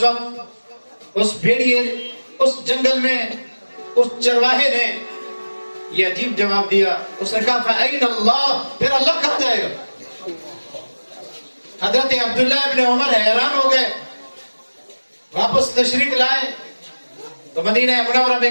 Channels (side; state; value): both; inverted; correlation -1.00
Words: وقت اس بھیڑیے، اس جنگل میں اس چرواہے نے یہ عجیب جواب دیا، اس نے کہا فَأَيْنَ اللَّهُ، پھر اللہ کہاں جائے گا؟ حضرت عبداللہ ابن عمر حیران ہو گئے، واپس تشریف لائے تو مدینہ منورہ میں